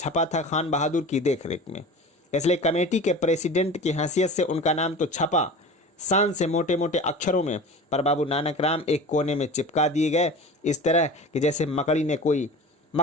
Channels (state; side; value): normal; both; correlation 0.35